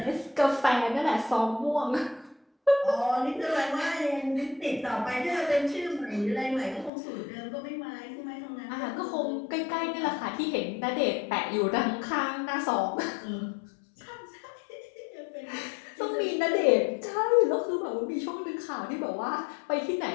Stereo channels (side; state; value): right; drops out; at 6.9 s